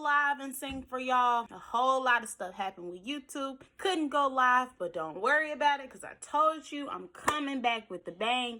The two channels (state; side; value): identical; both; correlation 1.00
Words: live and sing for y'all. A whole lot of stuff happened with YouTube. Couldn't go live, but don't worry about it because I told you I'm coming back with the